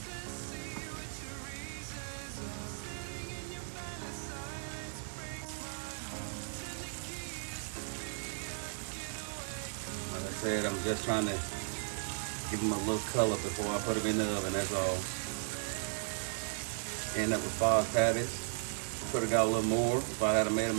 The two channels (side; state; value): left; silent; 54 dB below the other